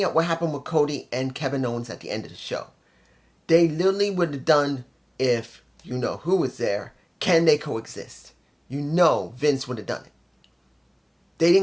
at what happened with Cody and Kevin Owens at the end of the show. They literally would have done, if you know who was there, can they coexist? You know Vince would have done it. They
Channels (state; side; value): identical; both; correlation 1.00